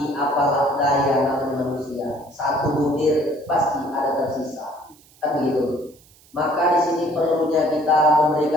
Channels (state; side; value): noise; right; hiss, 28 dB below the sound